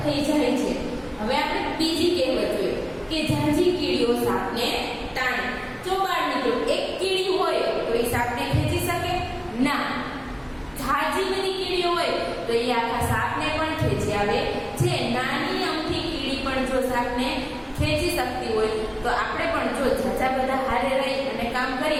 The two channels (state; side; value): identical; both; correlation 1.00